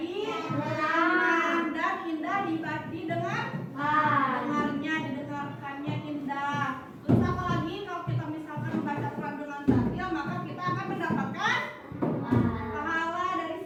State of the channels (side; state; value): both; identical; correlation 1.00